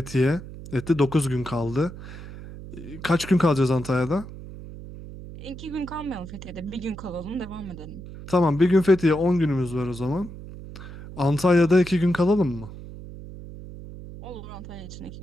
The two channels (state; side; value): noise; right; hum, 13 dB below the sound